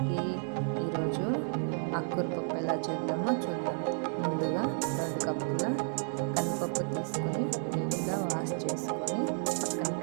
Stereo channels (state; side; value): silent; left; 57 dB below the other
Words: ఈరోజు ఆకుకూర పప్పు ఎలా చేద్దామో చూద్దాం. ముందుగా 2 కప్పుల కందిపప్పు తీసుకొని నీట్గా వాష్ చేసుకొని పక్కన